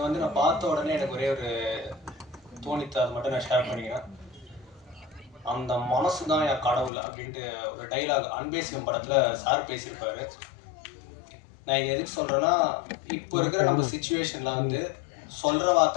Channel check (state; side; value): drops out; right; at 6.9 s